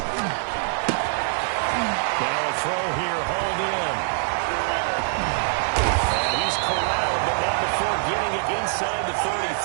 Now a throw here, hauled in. And he's corralled, but not before getting it inside the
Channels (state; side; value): silent; left; digital silence